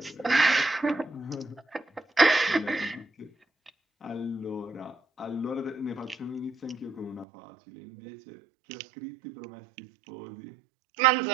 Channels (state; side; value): drops out; left; at 7.2 s